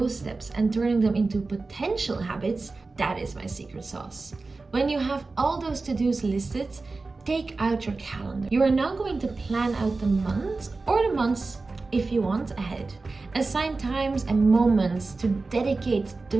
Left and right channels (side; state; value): left; quieter; 3.7 dB